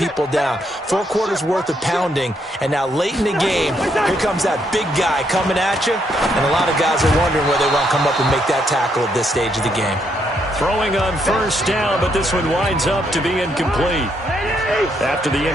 down, 4 quarters worth of pounding, and now late in the game, here comes that big guy coming at you, and a lot of guys are wondering whether they want to come up and make that tackle at this stage of the game. Throwing on 1st down, but this one winds up to be incomplete. After the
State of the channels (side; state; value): both; normal; correlation 0.75